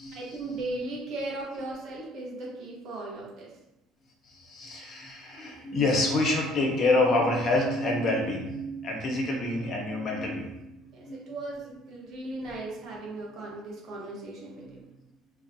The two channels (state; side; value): normal; both; correlation 0.59